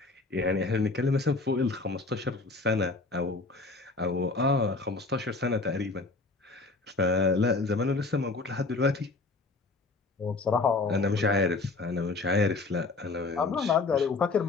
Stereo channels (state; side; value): quieter; right; 3.6 dB